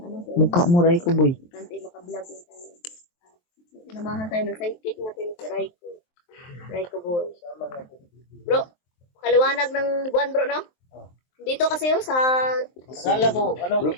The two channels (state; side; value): late; right; 23 ms